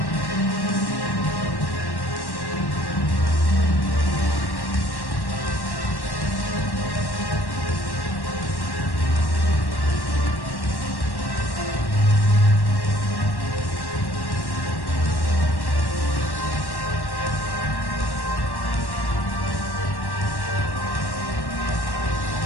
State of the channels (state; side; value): late; right; 1.1 ms